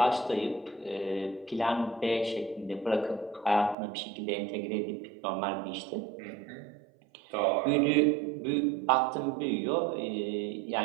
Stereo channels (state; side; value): drops out; left; at 3.8 s